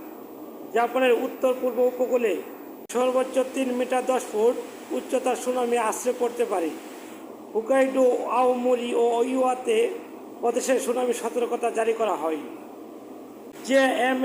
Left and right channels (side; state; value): both; identical; correlation 1.00